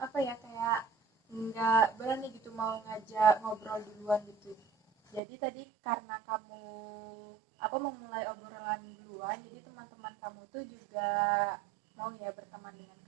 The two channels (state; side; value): drops out; left; at 5.2 s